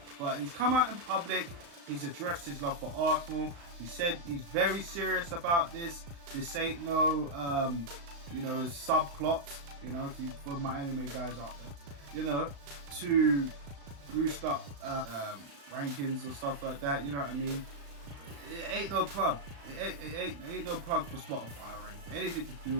But he's come out in public. He's addressed his love for Arsenal. He said he's very serious about this. This ain't no, subplot, for my anime guys out there, to boost up rankings or stuff like that, you know what I mean? It ain't no plug. It ain't no plug for Spotify or anything to do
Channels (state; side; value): late; left; 35 ms